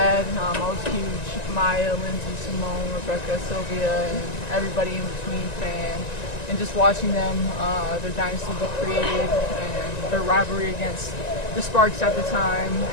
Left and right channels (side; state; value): right; late; 1.9 ms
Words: I was a huge Maya, Lindsay, Simone, Rebecca, Sylvia, and everybody in between fan. And just watching them, their dynasty be created, and their rivalry against the Sparks at the time,